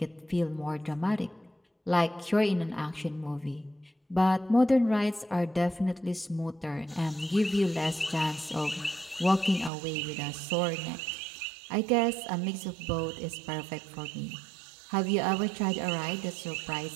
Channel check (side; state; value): left; drops out; at 9.7 s